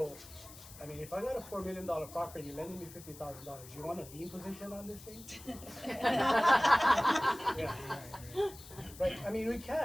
I mean, if I got a $4 million property, you're lending me $50,000. You want a lien position on this thing? Yeah. Right. I mean, we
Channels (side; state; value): left; noise; hiss, 17 dB below the sound